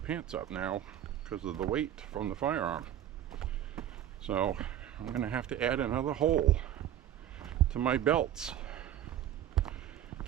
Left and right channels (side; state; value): left; quieter; 11.2 dB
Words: up now because of the weight from the firearm. So I'm gonna have to add another hole to my belts.